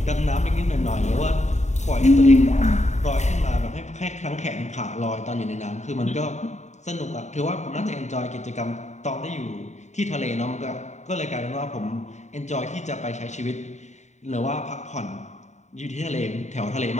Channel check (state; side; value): late; right; 0.34 ms